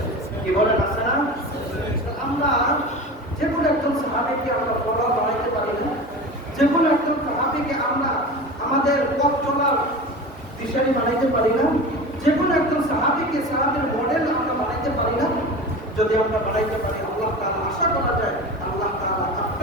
কি বলেন, আছে না? আমরা যে কোনো একজন সাহাবীকে আমরা ফলোয়ার বানাইতে পারি না, যে কোনো একজন সাহাবীকে আমরা আমাদের পথ চলার দিশারি বানাইতে পারি না, যে কোনো একজন সাহাবীকে সাহাবীর মডেল আমরা বানাইতে পারি না। যদি আমরা বানাইতে পারি, আল্লাহ তাআলা আশা করা যায় আল্লাহ তাআলা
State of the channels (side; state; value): both; normal; correlation 0.31